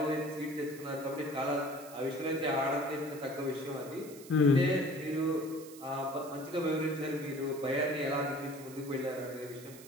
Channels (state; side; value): noise; right; hiss, 18 dB below the sound